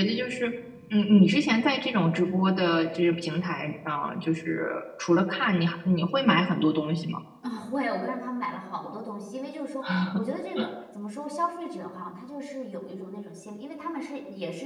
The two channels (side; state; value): both; identical; correlation 1.00